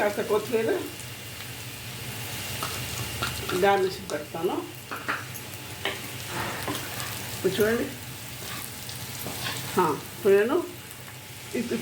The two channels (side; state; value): both; identical; correlation 1.00